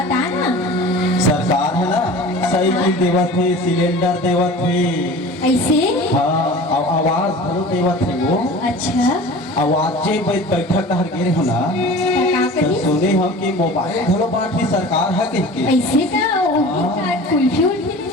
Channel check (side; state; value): both; normal; correlation 0.39